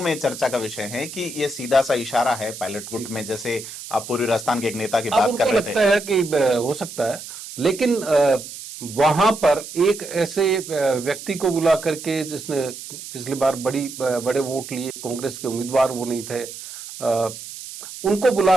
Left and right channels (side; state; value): right; noise; hiss, 12 dB below the sound